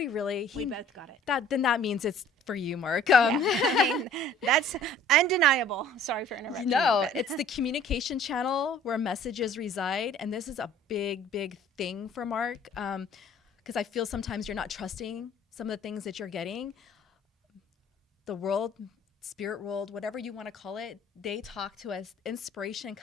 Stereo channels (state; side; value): normal; both; correlation 0.52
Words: really? We both got it. Then that means it's for you, Mark. Yeah. I mean, that's undeniable. Sorry for interrupting. No, you, but- it's the communication channel where messages reside. And this is a big, big thing for Mark. Because I feel sometimes you're not trusting some of the things that you're getting. The world, spirit world, whatever you want to call it, they talk to us. Inspiration